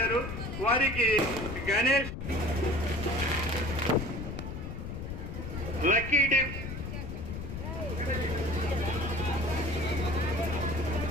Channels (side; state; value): left; noise; rumble, 7 dB below the sound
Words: వారికి గణేష్ లక్కీ డిప్